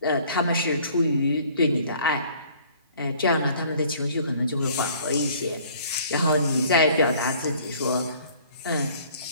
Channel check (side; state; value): both; inverted; correlation -0.54